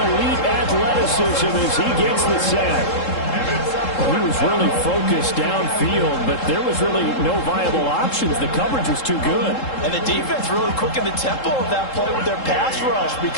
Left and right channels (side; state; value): right; late; 3.7 ms